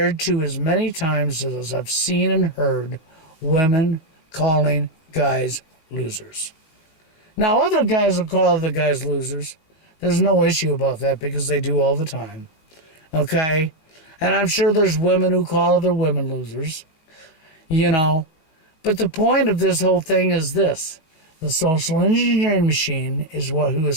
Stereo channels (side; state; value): right; late; 19 ms